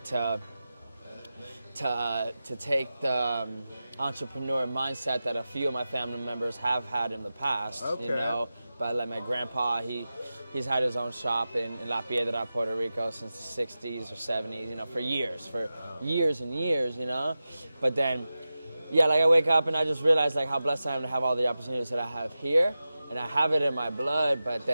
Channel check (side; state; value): both; inverted; correlation -0.94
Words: to take the entrepreneur mindset that a few of my family members have had in the past, Okay. But like my grandpa, he's had his own shop in La Piedra, Puerto Rico since the 60s or 70s, for years and years, But then, yeah, like I wake up and I just realize like how blessed I am to have all the opportunities that I have here. And I have it in my blood, but